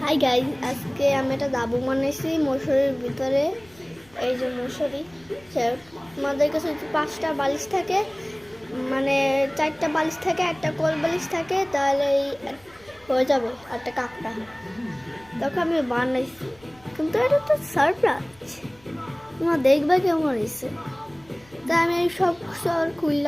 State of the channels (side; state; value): left; noise; rumble, 29 dB below the sound